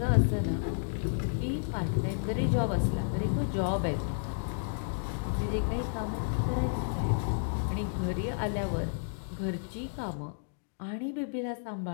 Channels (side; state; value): right; silent; digital silence